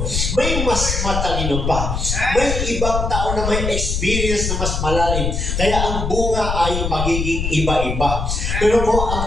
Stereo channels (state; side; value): noise; left; rumble, 2 dB below the sound